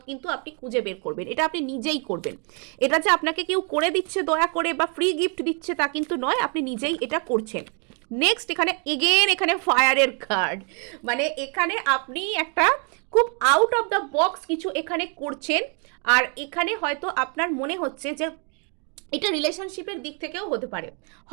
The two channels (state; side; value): quieter; left; 37.5 dB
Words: কিন্তু আপনি খুঁজে বের করবেন। এটা আপনি নিজেই করবেন। এটা যে আপনাকে কেউ করে দিচ্ছে দয়া করে বা ফ্রি গিফট দিচ্ছে তা কিন্তু নয়, আপনি নিজেই এটা করছেন। নেক্সট এখানে এগেন এখানে ফায়ারের কার্ড, মানে এখানে আপনি একটা খুব আউট অফ দ্য বক্স কিছু এখানে করছেন। আর এখানে হয়তো আপনার মনে হচ্ছে যে এটা রিলেশনশিপের দিক থেকেও হতে পারে।